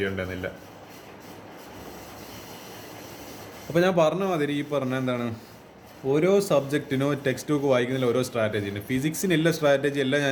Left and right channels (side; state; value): both; identical; correlation 1.00